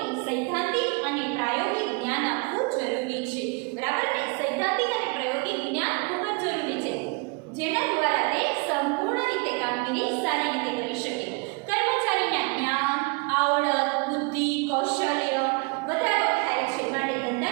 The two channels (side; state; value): left; quieter; 31.1 dB